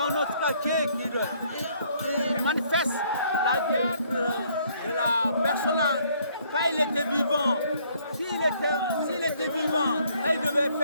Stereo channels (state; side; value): inverted; both; correlation -0.64